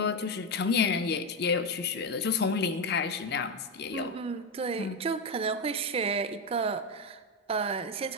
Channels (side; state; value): both; normal; correlation 0.10